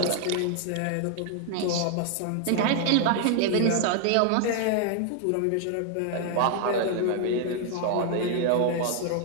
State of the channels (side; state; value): both; different; correlation 0.00